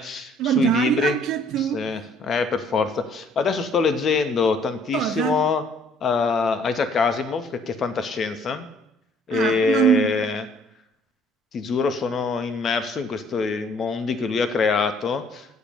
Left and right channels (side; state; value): both; normal; correlation 0.60